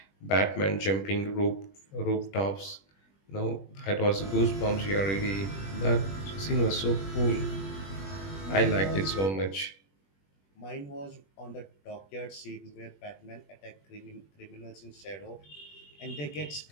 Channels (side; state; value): right; late; 21 ms